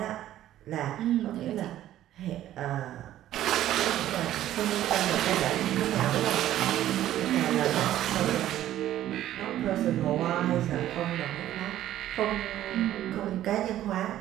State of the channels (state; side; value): quieter; left; 12.9 dB